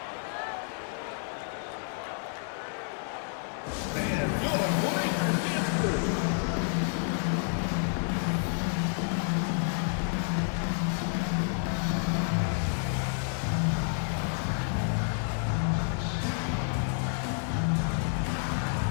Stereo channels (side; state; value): right; silent; 57 dB below the other